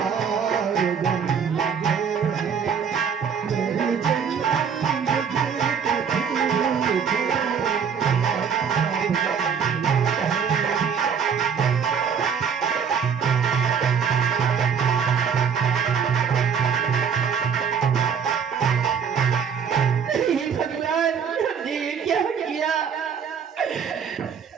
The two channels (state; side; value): quieter; left; 6.8 dB